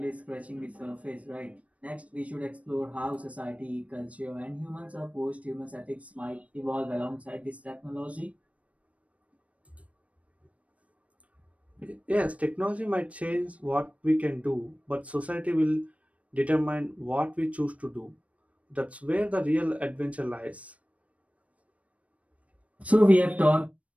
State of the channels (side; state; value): left; late; 0.066 ms